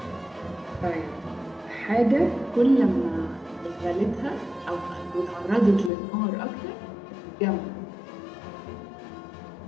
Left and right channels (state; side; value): drops out; right; at 5.9 s